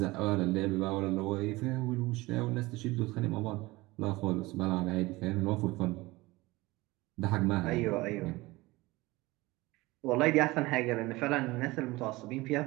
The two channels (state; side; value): quieter; left; 20.7 dB